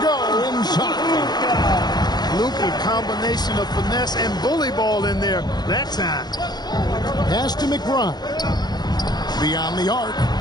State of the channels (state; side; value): late; right; 0.20 ms